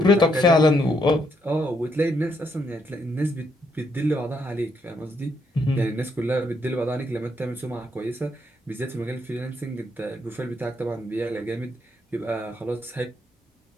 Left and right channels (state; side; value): normal; both; correlation 0.75